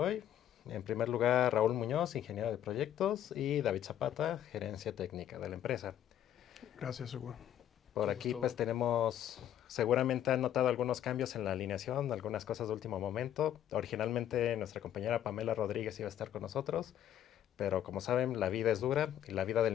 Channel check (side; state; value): right; quieter; 11.0 dB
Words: En primer lugar, Raúl Muñoz, ingeniero de proyectos, y David Zapata, gerencia técnica de la empresa. Gracias, Hugo. Por Mucho aquí pues gusto. tenemos, seguramente han notado algunos cambios en la alineación, algunas cosas de último momento. Originalmente nuestra compañera Pamela Rodríguez iba a estar con nosotros, pero como saben, la vida es dura y la vida